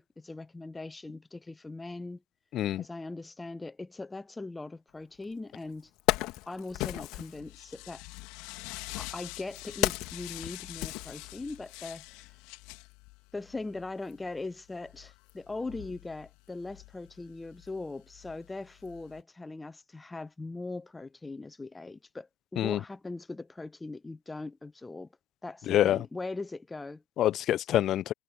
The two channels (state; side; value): quieter; right; 8.6 dB